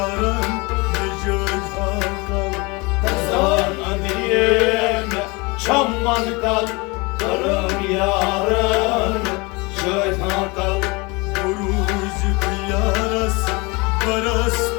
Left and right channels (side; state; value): right; quieter; 26.4 dB